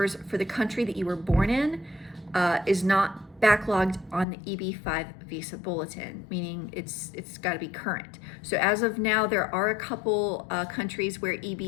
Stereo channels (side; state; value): right; drops out; at 4.2 s